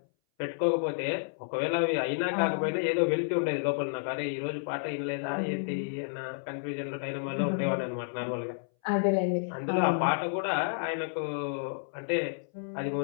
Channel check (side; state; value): right; silent; 57 dB below the other